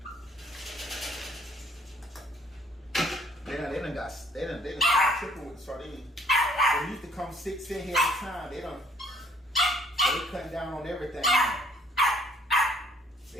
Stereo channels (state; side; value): normal; both; correlation 0.61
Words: They done tripping with the sardines. They used to come 6 in here at a time. They cutting down on everything now. They